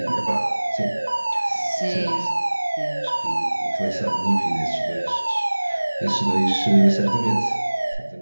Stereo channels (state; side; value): inverted; both; correlation -1.00